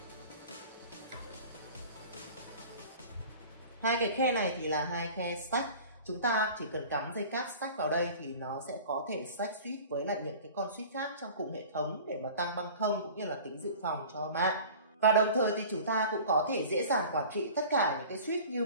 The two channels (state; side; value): inverted; both; correlation -0.42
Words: Hai cái khe này thì là hai khe stack. Chúng ta chỉ cần cắm dây cáp stack vào đây thì nó sẽ có thể stack switch với lại những cái con switch khác trong cùng hệ thống để mà tăng băng thông cũng như là tính dự phòng cho mạng. Và đồng thời thì chúng ta cũng có thể dễ dàng quản trị tất cả những cái switch như